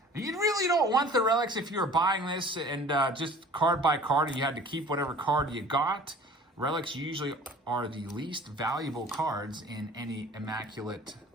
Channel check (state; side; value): normal; both; correlation 0.46